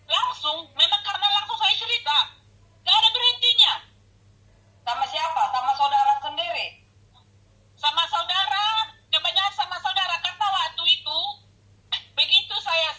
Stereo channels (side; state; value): both; identical; correlation 1.00